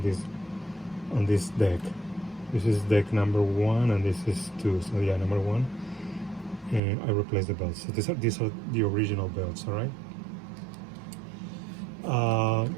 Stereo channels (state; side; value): drops out; left; at 6.8 s